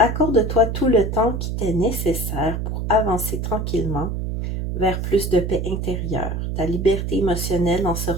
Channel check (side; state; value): right; noise; hum, 3 dB below the sound